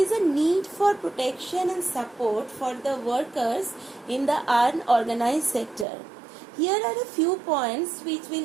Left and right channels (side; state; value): left; drops out; at 5.9 s